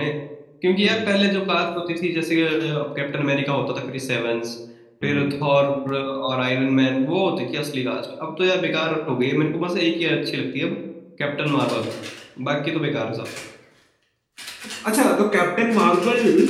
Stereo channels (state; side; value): identical; both; correlation 1.00